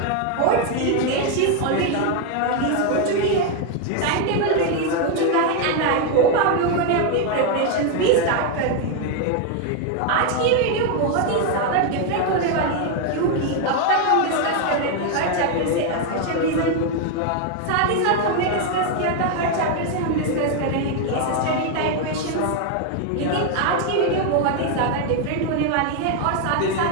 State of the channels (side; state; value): both; different; correlation 0.01